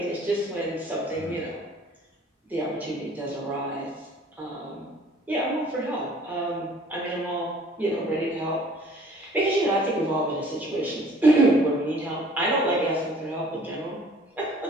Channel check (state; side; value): normal; both; correlation 0.53